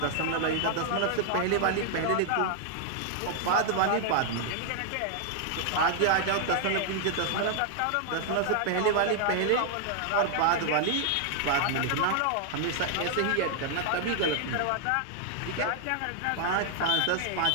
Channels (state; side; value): different; both; correlation -0.01